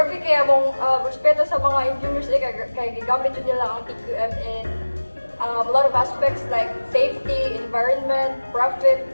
kaya mong respeto sa mga engineers kaya gigamit yun nila ang TQM in a lot of aspects like safety, environment, profit,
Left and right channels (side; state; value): both; inverted; correlation -1.00